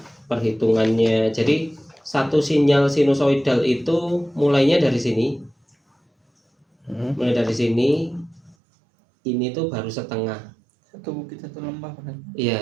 Perhitungannya. Jadi satu sinyal sinusoidal itu mulainya dari sini. Mulai dari sini. Ini tuh baru setengah. Satu bukit satu lembah kan? Iya,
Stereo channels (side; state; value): left; drops out; at 8.6 s